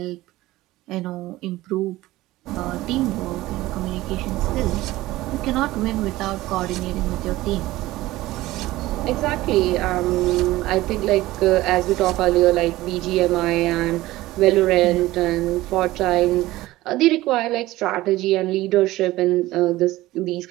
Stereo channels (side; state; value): left; quieter; 17.5 dB